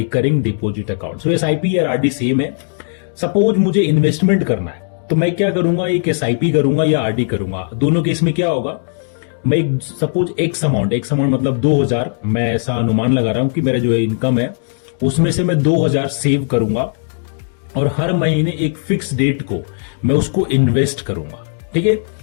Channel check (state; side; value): silent; right; digital silence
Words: डिपॉजिट अकाउंट। सो एसआईपी और आरडी सेम है। सपोज मुझे इन्वेस्टमेंट करना है तो मैं क्या करूंगा, एक एसआईपी करूंगा या आरडी करूंगा। दोनों केस में क्या होगा, मैं सपोज एक्स अमाउंट मतलब 2000, मैं ऐसा अनुमान लगा रहा हूं कि मेरा जो इनकम है उसमें से मैं 2000 सेव करूंगा और हर महीने एक फिक्स डेट को मैं उसको इन्वेस्ट करूंगा। ठीक है,